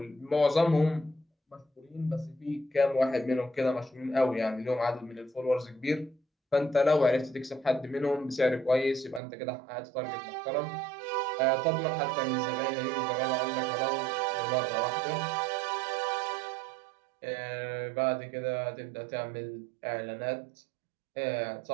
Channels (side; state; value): left; drops out; at 9.2 s